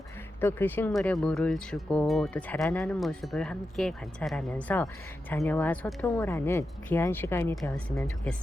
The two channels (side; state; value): both; normal; correlation 0.89